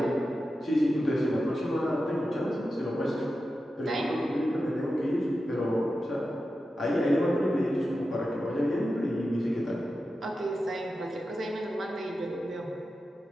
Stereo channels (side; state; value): both; normal; correlation 0.91